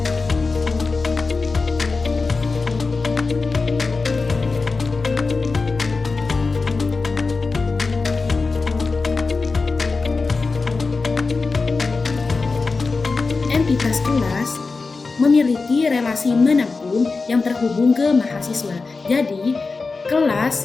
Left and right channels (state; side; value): quieter; right; 4.1 dB